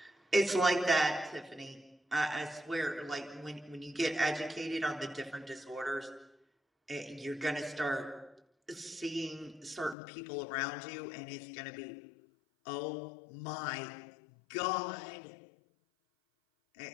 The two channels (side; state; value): right; drops out; at 10.0 s